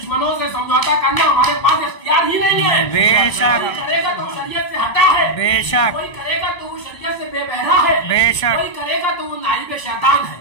سے سمجھوتا کرنا ہمارے پاس اختیار ہی نہیں ہے. بے شک. کوئی کرے گا تو شریعت سے ہٹا ہے, بے شک. کوئی کرے گا تو وہ شریعت سے بے بہرا ہے, بے شک. کوئی کرے گا تو وہ نائب شیطان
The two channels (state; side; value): late; right; 1.5 ms